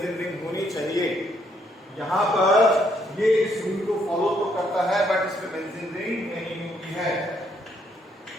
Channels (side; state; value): both; normal; correlation 0.71